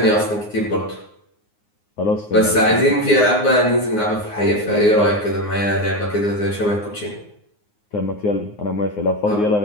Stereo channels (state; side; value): late; right; 9.6 ms